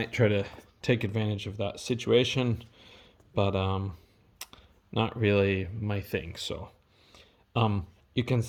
try to take advantage of that situation, but not really my thing. So you can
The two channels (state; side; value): identical; both; correlation 1.00